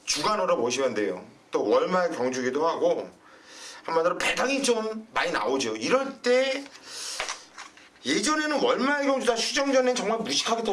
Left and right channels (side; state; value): both; identical; correlation 1.00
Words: 주간으로 보시면 돼요. 또 월말 경주기도 하고 한마디로 배당이 좀 많이 나오죠. 이럴 때 예전에는 월말 경주 다 휴정 전엔 정말 무식하게